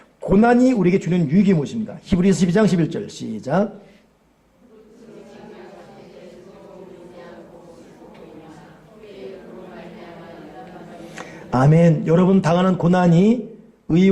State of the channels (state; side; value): identical; both; correlation 1.00